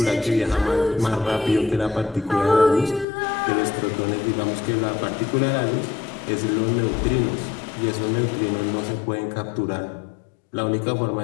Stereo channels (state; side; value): drops out; right; at 3.1 s